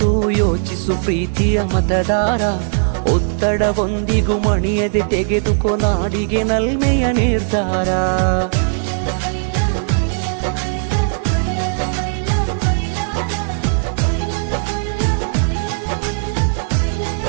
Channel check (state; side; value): silent; left; digital silence